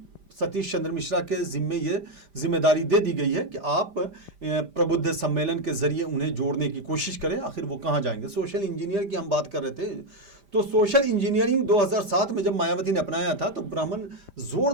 सतीश चंद्र मिश्रा के जिम्मे ये जिम्मेदारी दे दी गई है कि आप प्रबुद्ध सम्मेलन के जरिए उन्हें जोड़ने की कोशिश करें। आखिर वो कहाँ जाएंगे? सोशल इंजीनियर की हम बात कर रहे थे, तो सोशल इंजीनियरिंग 2007 में जब मायावती ने अपनाया था, तो ब्राह्मण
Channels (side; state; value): left; late; 5.0 ms